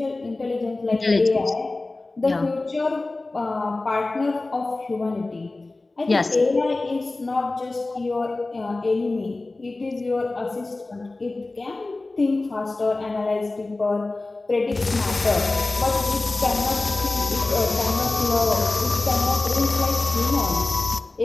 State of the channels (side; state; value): right; quieter; 3.2 dB